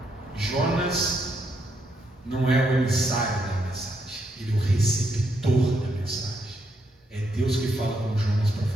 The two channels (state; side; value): normal; both; correlation 0.77